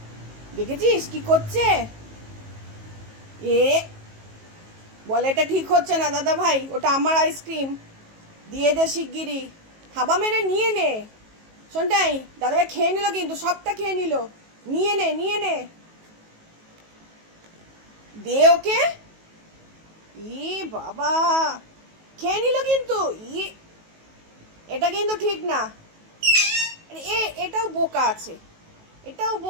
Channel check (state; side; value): late; left; 19 ms